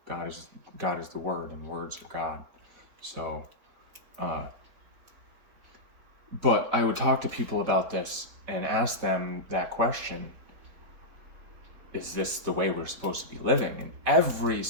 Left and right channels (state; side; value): late; left; 4.1 ms